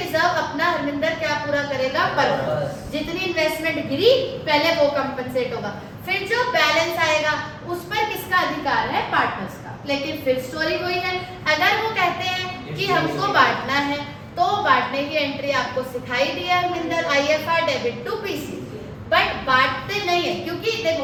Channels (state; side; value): identical; both; correlation 1.00